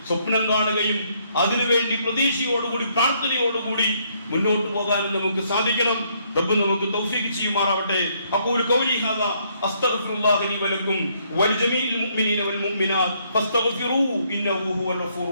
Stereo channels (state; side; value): inverted; both; correlation -0.70